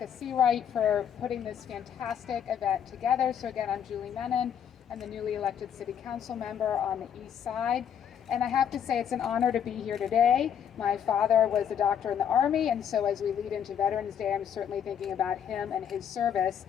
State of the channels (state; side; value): quieter; right; 8.6 dB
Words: Seawright for putting this fantastic event together. So again, I'm Julie Menin. I'm the newly elected City Council member on the East Side. And I have to say it's an honor to be here today. My father was a doctor in the Army, and so as we lead into Veterans Day, I'm certainly thinking about him and his service.